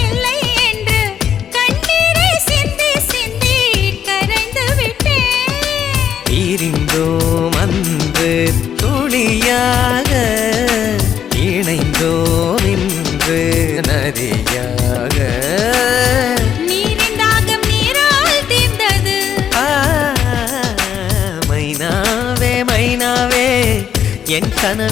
இல்லை என்று கண்ணீரை சிந்தி சிந்தி கரைந்து விட்டேன் பிரிந்தோம் அன்று துளியாக இணைந்தோம் இன்று நதியாக நீரின் தாகம் நீரால் தீர்ந்தது மைனாவே மைனாவே என்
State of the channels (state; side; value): quieter; right; 8.9 dB